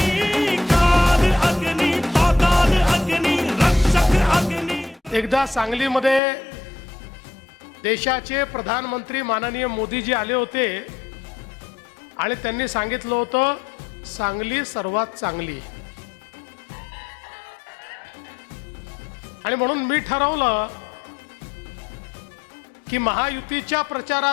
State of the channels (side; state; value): right; drops out; at 6.2 s